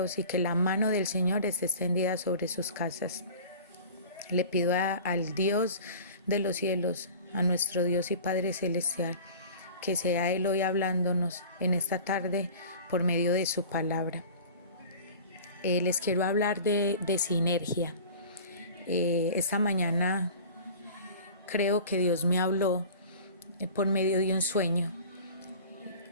y que la mano del Señor esté extendida sobre sus casas. Le pido al Dios de los cielos, a nuestro Dios y Padre Celestial, que sea Él hoy hablándonos en esta tarde por medio de su palabra. Les quiero hablar de sinergia. Esta mañana creo que Dios me habló por medio de un sueño,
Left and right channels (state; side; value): inverted; both; correlation -0.40